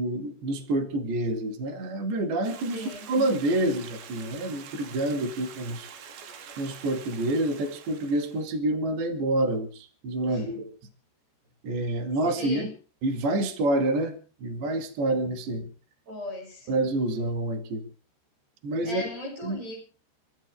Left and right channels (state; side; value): late; left; 14 ms